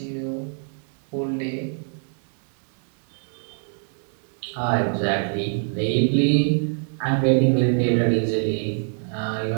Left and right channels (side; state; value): left; silent; 59 dB below the other